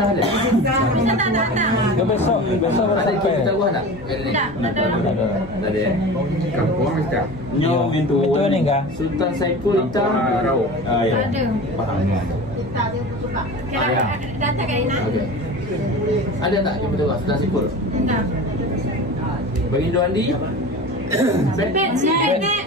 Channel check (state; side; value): normal; both; correlation 0.33